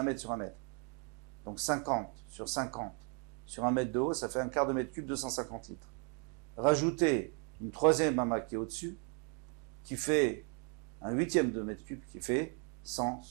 mètre sur 1 mètre. Donc 50 sur 50 sur 1 mètre de haut, ça fait un quart de mètre cube, 250 litres. Rajoutez une troisième ama qui est au-dessus, qui fait un huitième de mètre cube, qui fait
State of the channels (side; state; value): left; quieter; 38.5 dB